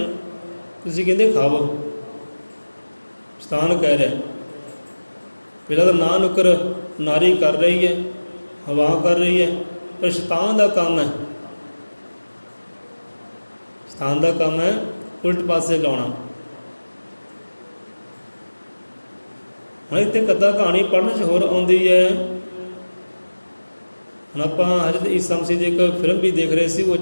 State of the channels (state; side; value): inverted; both; correlation -1.00